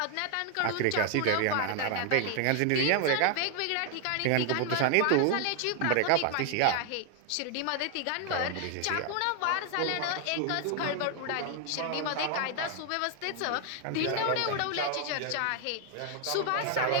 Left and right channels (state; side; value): different; both; correlation 0.00